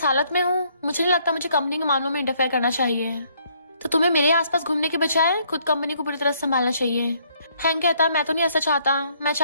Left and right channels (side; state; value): both; inverted; correlation -0.66